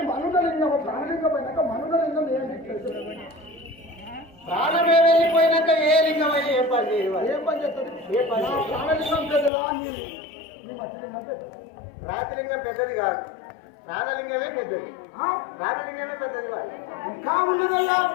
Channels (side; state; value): right; drops out; at 9.5 s